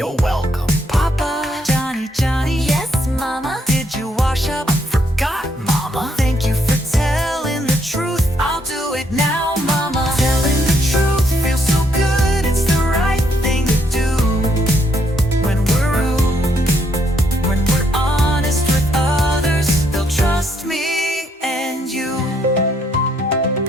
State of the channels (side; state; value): both; normal; correlation 0.73